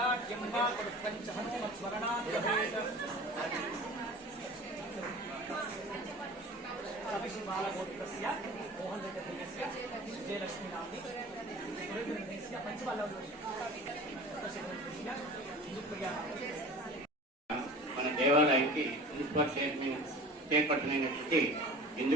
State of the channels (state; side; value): normal; both; correlation 0.40